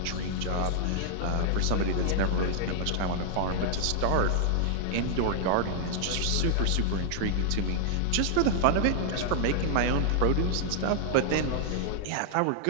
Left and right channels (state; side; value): different; both; correlation 0.00